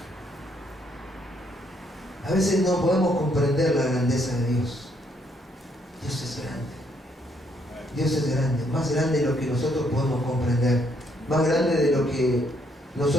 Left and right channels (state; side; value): normal; both; correlation 0.71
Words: A veces no podemos comprender la grandeza de Dios. Dios es grande. Dios es grande, más grande de lo que nosotros podemos comprender, más grande de lo que